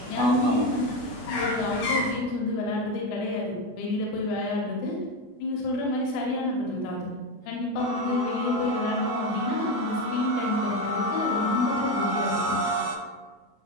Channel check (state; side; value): late; right; 24 ms